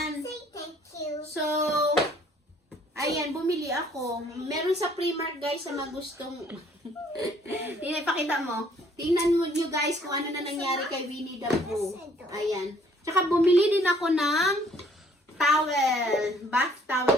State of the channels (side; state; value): both; normal; correlation 0.61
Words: So, ayan, bumili ako. Meron sa Primark, guys, sa mga gustong... Ipakita mo. Tingnan mo nyo, guys, kung ano na nangyari kay Winnie the Pooh. Ayan. Tsaka bumili din ako ng towel. Bath towel